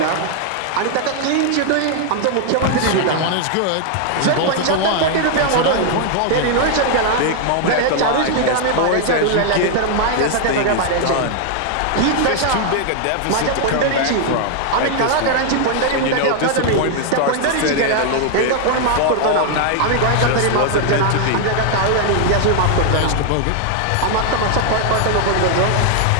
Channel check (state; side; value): different; both; correlation 0.00